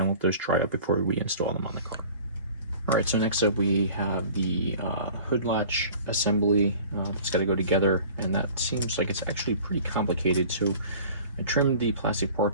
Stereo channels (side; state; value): both; inverted; correlation -0.45